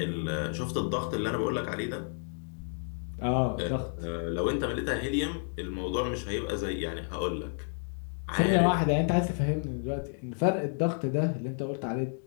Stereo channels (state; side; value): silent; right; 57 dB below the other